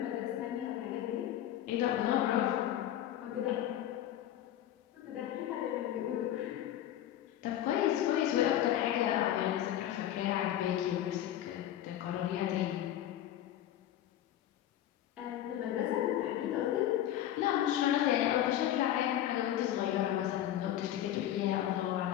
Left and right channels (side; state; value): right; quieter; 12.0 dB